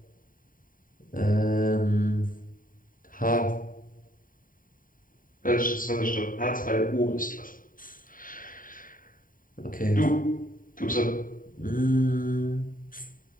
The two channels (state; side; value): late; right; 0.40 ms